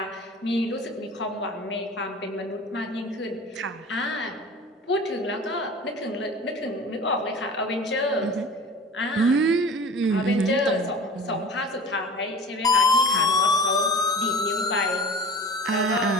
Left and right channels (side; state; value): both; normal; correlation 0.39